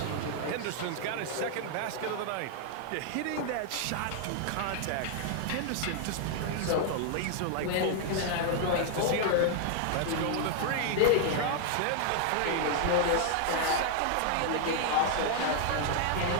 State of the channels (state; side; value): different; both; correlation 0.00